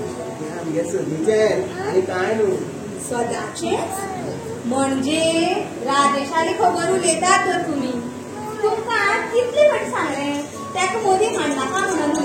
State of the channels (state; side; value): identical; both; correlation 1.00